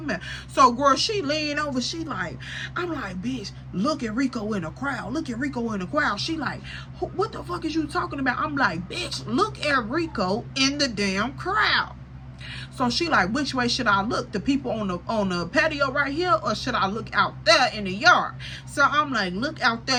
So, girl, she lean over, she like, I'm like, bitch, look at Rico in the crowd. She like, what the fuck is you talking about? I'm like, bitch, look at Rico in the damn crowd. So she like, which way should I look? The people on the patio right here, or should I look out there in the yard? So I'm like, look out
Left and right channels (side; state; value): both; identical; correlation 1.00